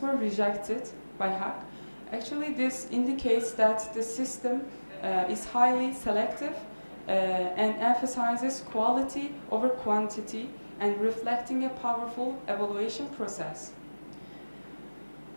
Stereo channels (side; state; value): both; inverted; correlation -1.00